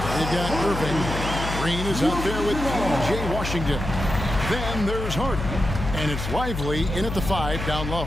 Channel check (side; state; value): left; noise; hum, 5 dB below the sound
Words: got Irving. Green is out there with P.J. Washington. Then there's Hardy. And it's Lively in at the 5 down low.